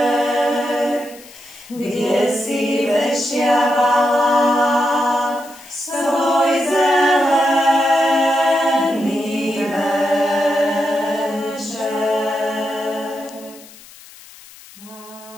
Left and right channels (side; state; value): left; noise; hiss, 21 dB below the sound